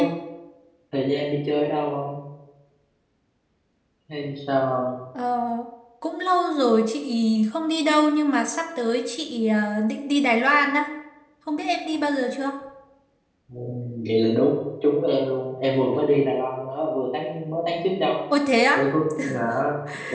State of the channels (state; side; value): identical; both; correlation 1.00